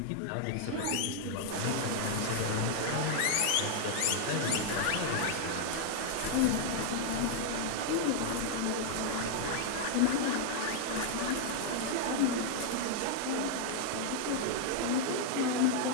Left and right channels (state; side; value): different; both; correlation 0.00